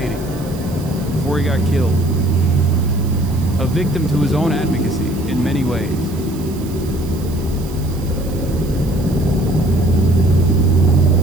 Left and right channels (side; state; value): right; noise; hiss, 19 dB below the sound